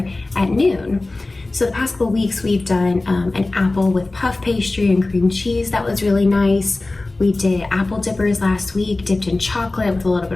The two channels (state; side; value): quieter; right; 3.1 dB